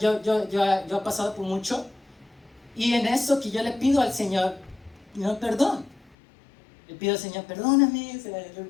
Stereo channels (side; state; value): right; drops out; at 6.2 s